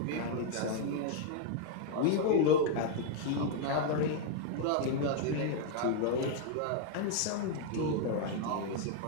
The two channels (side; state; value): both; different; correlation 0.00